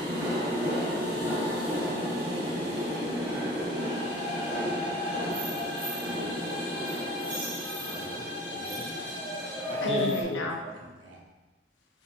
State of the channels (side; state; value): both; normal; correlation 0.40